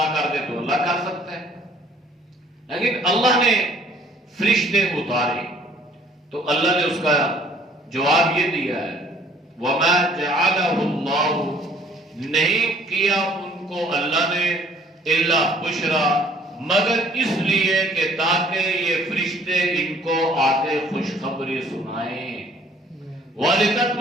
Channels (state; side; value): normal; both; correlation 0.57